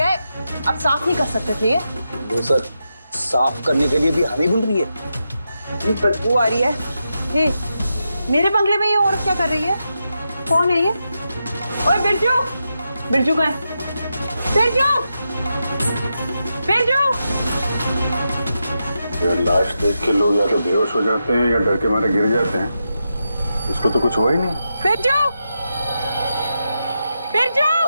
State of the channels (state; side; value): inverted; both; correlation -0.87